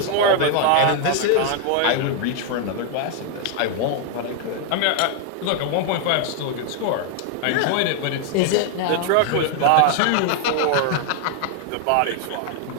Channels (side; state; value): both; different; correlation 0.00